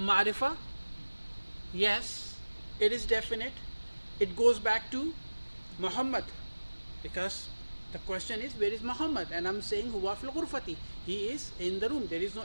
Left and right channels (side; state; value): both; inverted; correlation -1.00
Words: Yes. It is definite. It goes back to Muhammad, because the question is where is Muhammad, and I'm saying huwa fil ghurfati. He is in the room. There is no